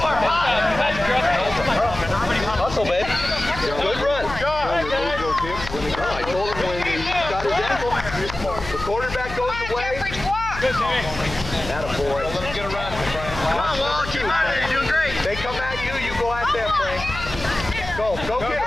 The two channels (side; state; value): left; noise; hum, 10 dB below the sound